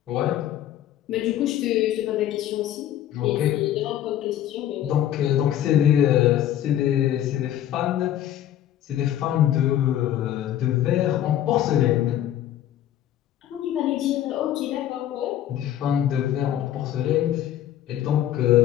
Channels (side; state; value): right; quieter; 11.7 dB